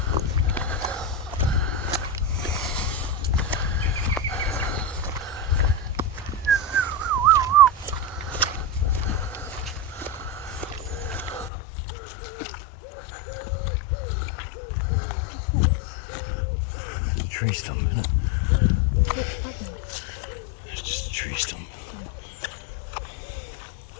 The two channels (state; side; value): drops out; right; at 11.5 s